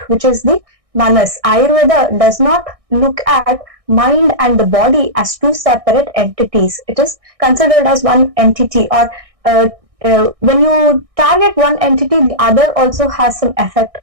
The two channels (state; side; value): late; left; 1.6 ms